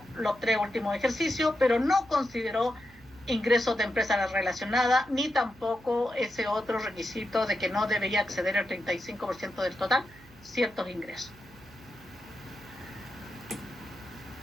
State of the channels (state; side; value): noise; right; hum, 25 dB below the sound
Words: los 3 últimos ejercicios, pero no consideró ingresos de empresa relacionada, ni tampoco ese otro requisito de que no debería exceder el 35% del total ciertos ingresos.